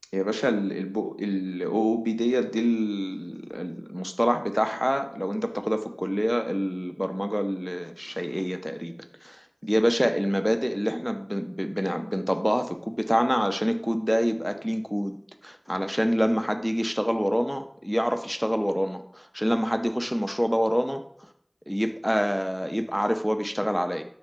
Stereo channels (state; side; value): identical; both; correlation 1.00